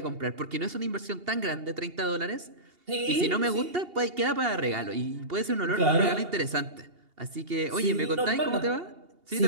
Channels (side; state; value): left; late; 2.8 ms